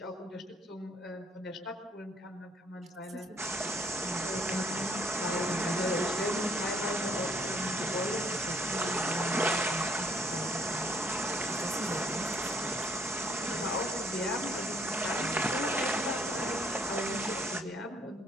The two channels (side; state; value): both; normal; correlation 0.65